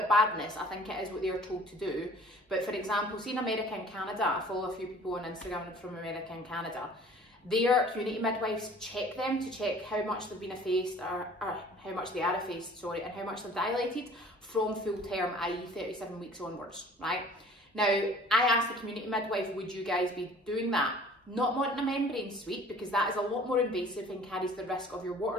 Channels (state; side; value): normal; both; correlation 0.50